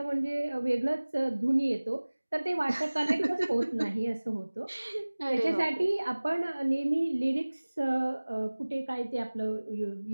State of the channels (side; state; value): both; inverted; correlation -1.00